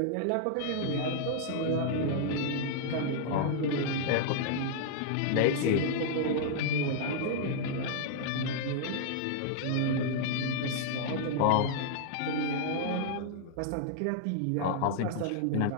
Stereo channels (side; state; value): both; different; correlation -0.01